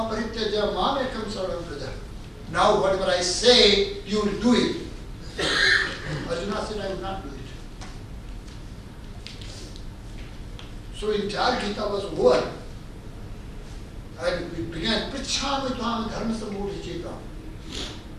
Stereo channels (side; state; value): both; identical; correlation 1.00